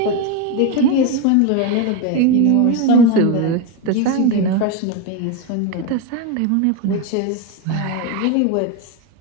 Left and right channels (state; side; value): different; both; correlation 0.03